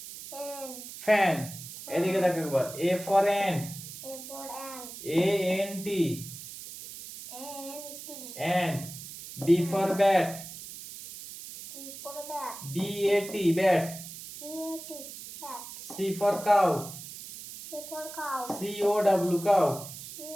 fan. এদিকে দেখো একবার A for ant. A N T ant. B for bat. B A T bat. C for cow. C O W cow.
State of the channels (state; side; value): noise; right; hiss, 12 dB below the sound